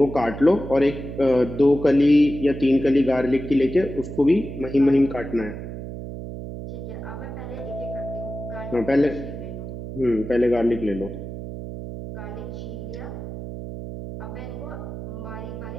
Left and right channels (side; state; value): right; noise; hum, 9 dB below the sound